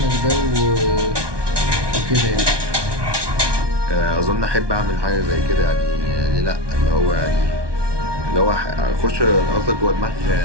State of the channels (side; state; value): left; late; 1.2 ms